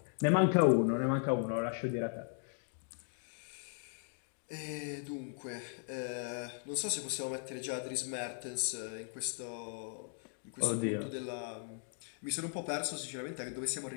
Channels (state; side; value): silent; right; 53 dB below the other